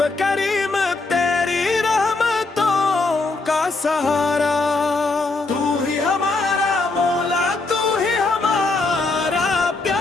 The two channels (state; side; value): quieter; right; 3.5 dB